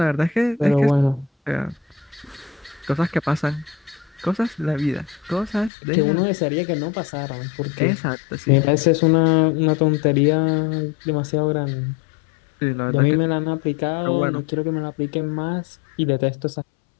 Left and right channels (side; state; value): right; drops out; at 5.7 s